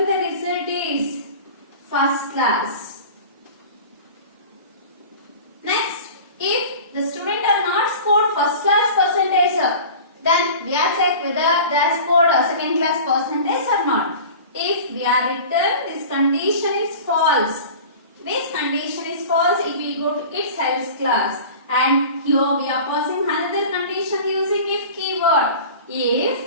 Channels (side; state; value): both; inverted; correlation -0.38